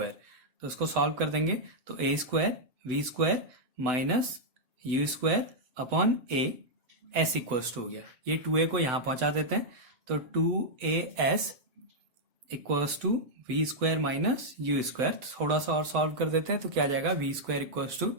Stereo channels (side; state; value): left; late; 7.9 ms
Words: तो इसको सॉल्व कर देंगे तो a square v square minus u square upon a s equals to हो गया, ये 2a को यहां पहुंचा देते हैं, तो 2as equals to v square minus u square. थोड़ा सा और सॉल्व कर देते हैं तो क्या आ जाएगा, v square equals to